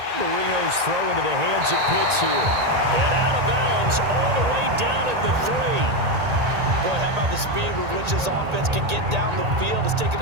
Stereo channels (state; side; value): late; left; 1.8 ms